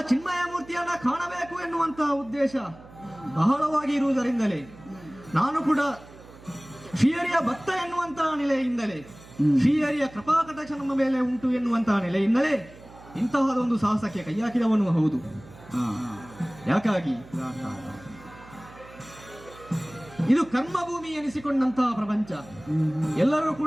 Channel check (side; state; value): right; noise; hum, 20 dB below the sound